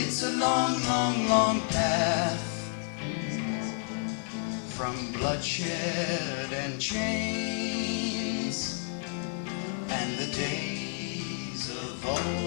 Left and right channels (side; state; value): right; silent; 56 dB below the other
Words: a long, long, long path from bloodshed and chains and the days of